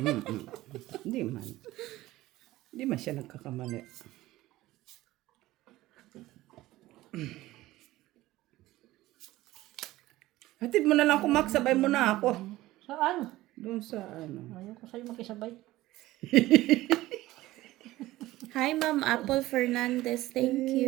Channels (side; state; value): left; quieter; 17.0 dB